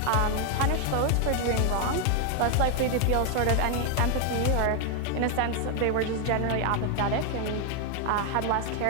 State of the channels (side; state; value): both; different; correlation 0.01